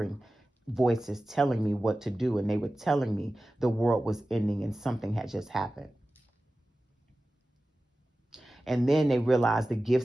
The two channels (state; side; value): normal; both; correlation 0.95